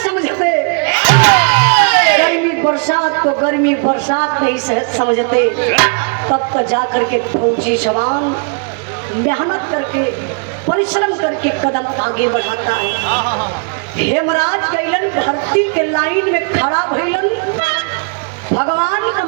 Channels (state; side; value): quieter; left; 39.0 dB